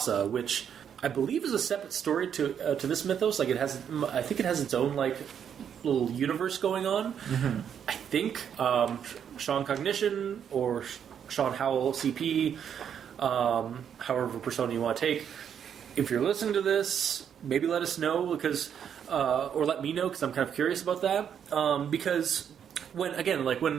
which I believe is a separate story to this mythos. Like I think it has its own like little universe going on. I think ShawnCognition or ShawnHowellsCP, however persona you want to take. If you're listening to this, maybe let us know or let me know because I'm kind of curious about that. Because when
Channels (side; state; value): left; quieter; 8.4 dB